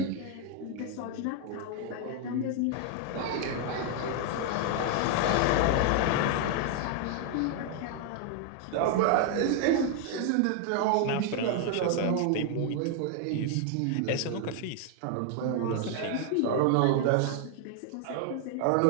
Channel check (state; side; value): different; both; correlation 0.00